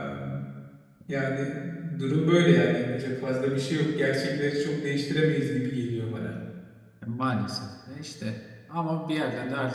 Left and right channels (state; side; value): identical; both; correlation 1.00